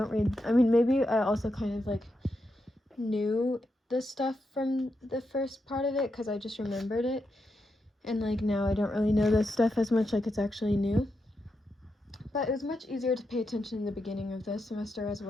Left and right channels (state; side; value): normal; both; correlation 0.85